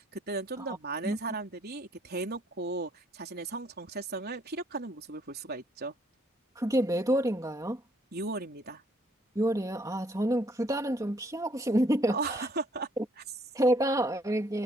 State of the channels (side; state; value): both; normal; correlation 0.66